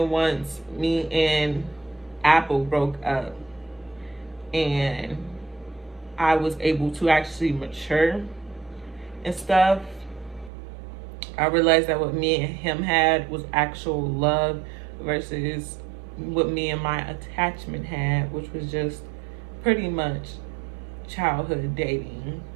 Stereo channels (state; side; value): drops out; left; at 10.5 s